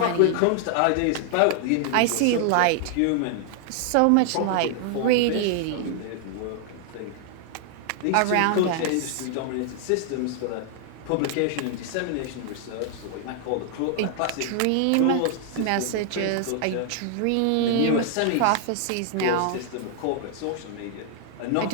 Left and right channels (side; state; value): both; different; correlation 0.00